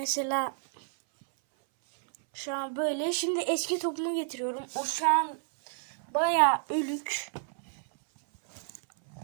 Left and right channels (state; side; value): silent; left; 58 dB below the other